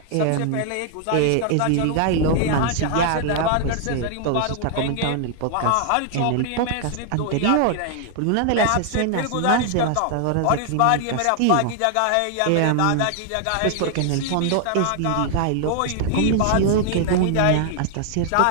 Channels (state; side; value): different; both; correlation 0.00